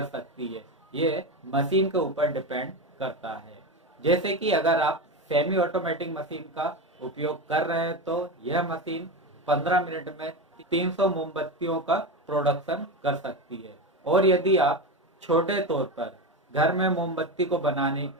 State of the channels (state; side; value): normal; both; correlation 0.19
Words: सकती है, ये मशीन के ऊपर डिपेंड करता है। जैसे कि अगर आप सेमी ऑटोमेटिक मशीन का उपयोग कर रहे हैं तो यह मशीन 15 मिनट में 300 मोमबत्तियों का प्रोडक्शन कर सकती है। और यदि आप छोटे तौर पर घर में मोमबत्ती को बनाने